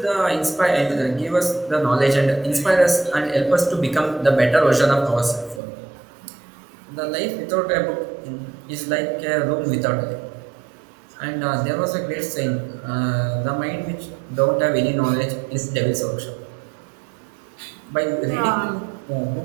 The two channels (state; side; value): drops out; left; at 5.6 s